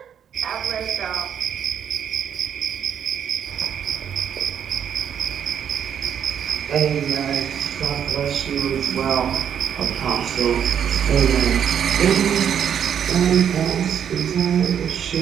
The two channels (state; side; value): quieter; left; 8.6 dB